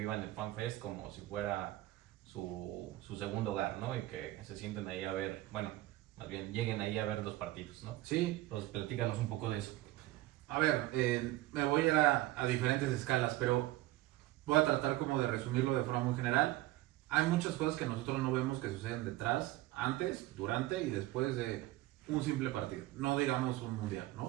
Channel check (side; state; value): left; quieter; 16.8 dB